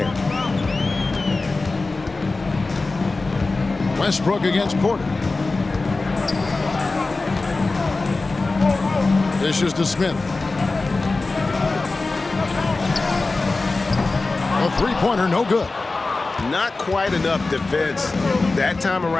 Westbrook against Porter. Dishes to Smith. A three-pointer, no good. Not quite enough defense that time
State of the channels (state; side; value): quieter; right; 3.5 dB